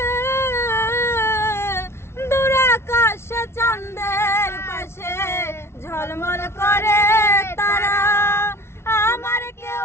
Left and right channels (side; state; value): right; late; 0.12 ms